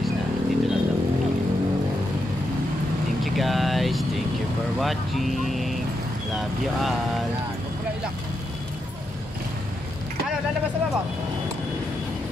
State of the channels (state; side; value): normal; both; correlation 0.83